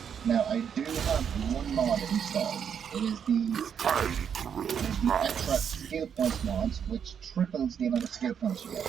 Now I do have one mod installed, It is the extra skill points mods, which triples the amount of skill points you get.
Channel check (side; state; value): left; quieter; 7.8 dB